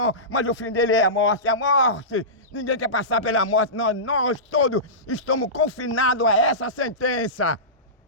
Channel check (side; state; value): both; normal; correlation -0.20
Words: mas o fim dele é a morte. A morte, ninguém quer passar pela morte. Nós todos estamos confinados a essa sentença,